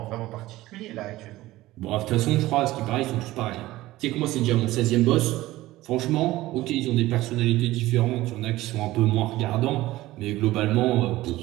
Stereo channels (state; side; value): quieter; left; 17.1 dB